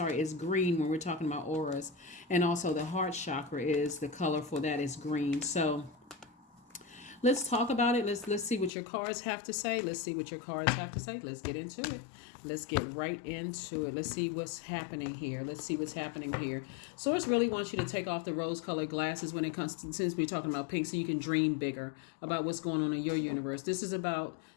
green when we're talking about auras. And also the heart chakra is the color for that is green. So let's talk about it. Let's see what your cards have to say. Let's get into it. Let's get right into it. Let's see what's happening here. Source really wants you to take off the rose-colored glasses when it comes to, since we're talking about pink, so you can dream bigger about what's going on in your universe. This is about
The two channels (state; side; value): drops out; right; at 8.7 s